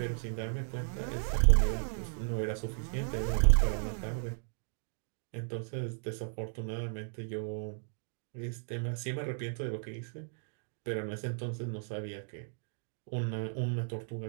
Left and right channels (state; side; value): silent; left; digital silence